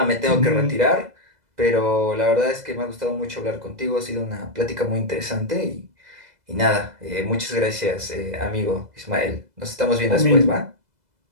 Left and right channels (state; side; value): late; left; 2.0 ms